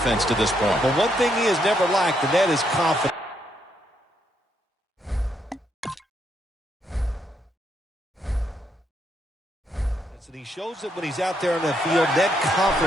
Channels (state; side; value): normal; both; correlation 0.76